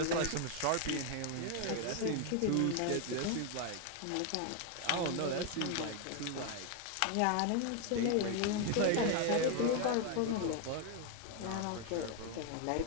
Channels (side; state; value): both; different; correlation 0.01